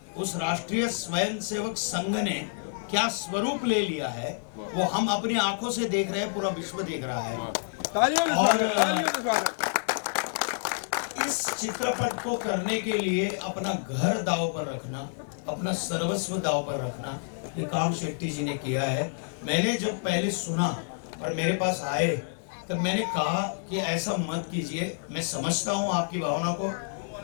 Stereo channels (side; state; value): right; silent; digital silence